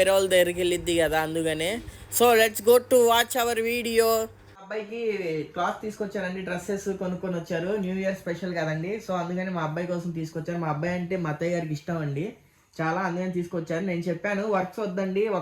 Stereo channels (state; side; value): identical; both; correlation 1.00